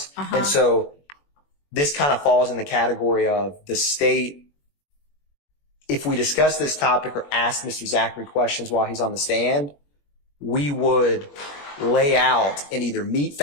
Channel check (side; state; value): right; late; 21 ms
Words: And so this kind of falls in the category of the state. If we discuss this topic or ask Mr. Zachary questions while he's on the stand, we would lay out and either meet